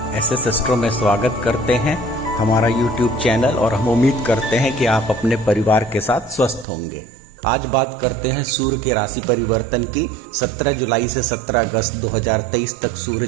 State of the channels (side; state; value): left; drops out; at 6.7 s